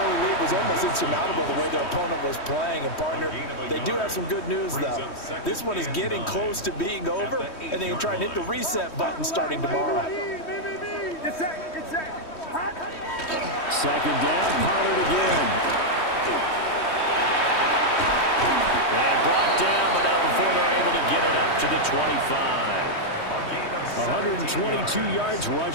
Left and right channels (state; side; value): late; right; 3.1 ms